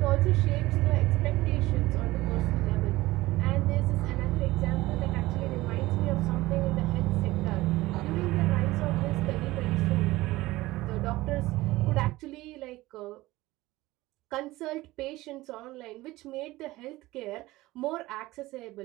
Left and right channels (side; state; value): left; quieter; 18.6 dB